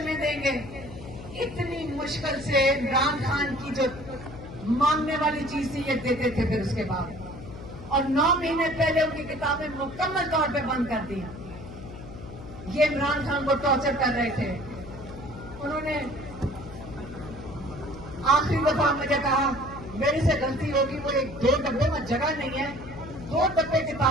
देंगे, इतनी मुश्किल से इमरान खान की जो मांगने वाली चीज थी ये देते थे। फिर उसके बाद और 9 महीने पहले उनकी किताबें मुकम्मल तौर पे बंद कर दी। ये इमरान खान को टॉर्चर कर रहे थे। उन्होंने आखिरी दफा मुझे कहा मेरे से गलती होगी, वो 1-2 डब्बे में जगह नहीं है, 2 डब्बे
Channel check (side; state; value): left; noise; hum, 13 dB below the sound